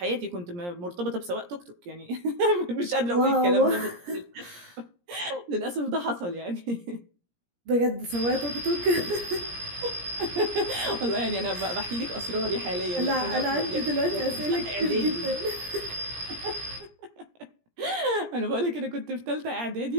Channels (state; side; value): late; left; 17 ms